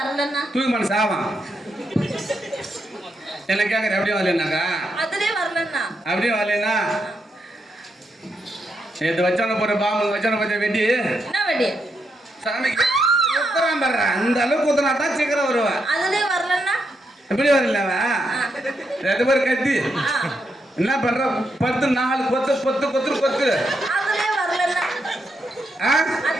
தூக்கு மனு சாவான். என்ன கேக்குற? அப்படியே வரலன்னாக்கா அப்படியே வரலன்னா நேற்று வச்சான போற பாம்பு வச்சான பச்சை வெட்டி சாமிக்கு குத்துறான் பாரு. அந்த அளவுக்கு குத்துனா தான் சீக்கிரம் வருவேன். எப்படி வரலவா? 2 பேர் கத்தி என்ன பண்ற? 10 4 கொத்து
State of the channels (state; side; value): normal; both; correlation 0.81